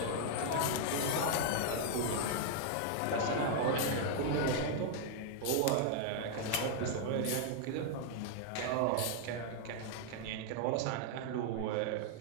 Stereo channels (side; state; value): both; different; correlation 0.00